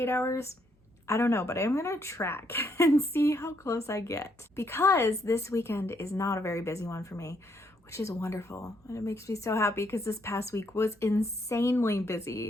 hours? I don't know, but I'm gonna track and see how close I get, because this weekend is not a very busy one for me, which is wonderful. And it makes me so happy because this past week was insanely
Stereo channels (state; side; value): normal; both; correlation 0.73